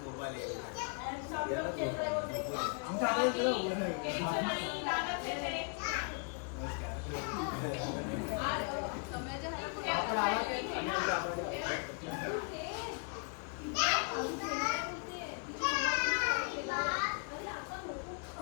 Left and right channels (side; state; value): right; quieter; 39.7 dB